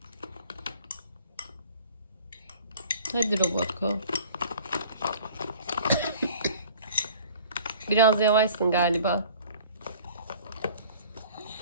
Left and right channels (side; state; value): both; inverted; correlation -0.49